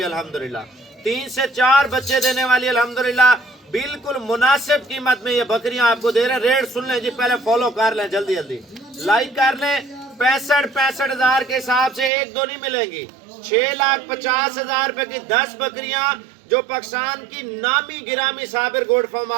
अल्हम्दुलिल्लाह। 3 से 4 बच्चे देने वाली अल्हम्दुलिल्लाह, बिल्कुल मुनासिब कीमत में ये बकरियां आपको दे रहे हैं। रेट सुन लें जी, पहले फॉलो कर लें, जल्दी जल्दी लाइक कर लें। 65 हज़ार के हिसाब से एक दो नहीं मिलेंगी। 6,50,000 रुपए की 10 बकरियां जो पाकिस्तान की नामी गिरामी साबिर गोड फार्म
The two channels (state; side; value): drops out; left; at 12.1 s